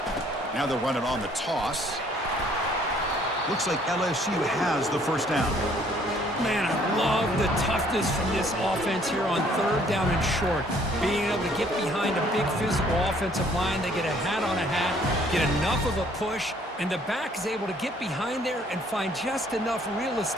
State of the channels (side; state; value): both; normal; correlation 0.61